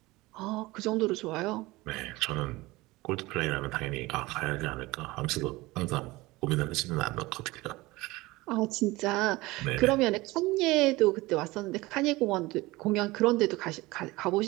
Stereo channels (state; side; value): quieter; left; 20.7 dB